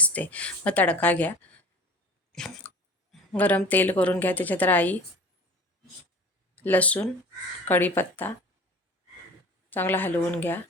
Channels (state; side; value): normal; both; correlation 0.40